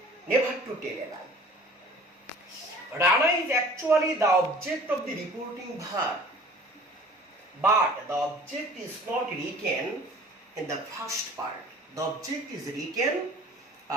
never to tell a lie. Rana is actually the object of the reporting verb. But the object is not written in the first part. The object is written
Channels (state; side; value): normal; both; correlation 0.47